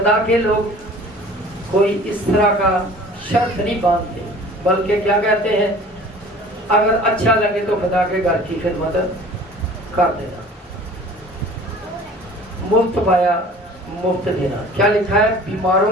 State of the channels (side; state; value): both; normal; correlation 0.46